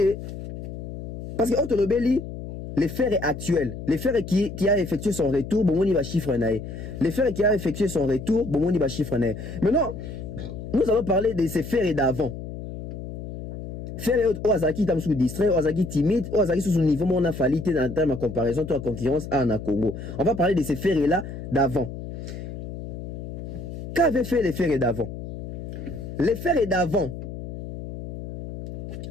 Parce que Otolobeli, les faits actuels, les faits qui a effectué son retour, bon, on y va chiffre naé. Les faits qui a effectué son retour, bon, on y va chiffre naé. Maintenant, nous allons parler de ces faits d'avant. Faits Ozaki tam sous distrait, Ozaki timide, Ozaki sous son niveau, on a fallu en termes de comparaison, toi concurrence à Congo. On va parler de ces faits là d'avant. Qu'avaient fait les faits d'avant? Les faits d'avant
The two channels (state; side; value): noise; left; hum, 9 dB below the sound